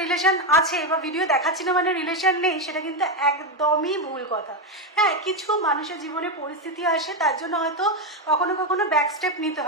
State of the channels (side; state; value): both; normal; correlation 0.08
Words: রিলেশন আছে বা ভিডিও দেখাচ্ছি না মানে রিলেশন নেই, সেটা কিন্তু একদমই ভুল কথা। হ্যাঁ, কিছু মানুষের জীবনে পরিস্থিতি আসে, তার জন্য হয়তো কখনো কখনো ব্যাক স্টেপ নিতে